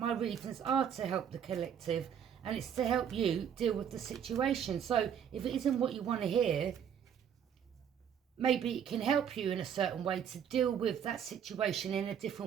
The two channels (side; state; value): left; quieter; 8.4 dB